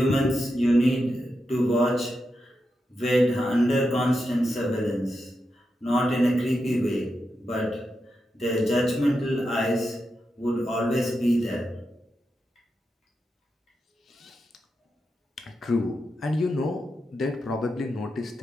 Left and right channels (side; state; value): both; normal; correlation 0.87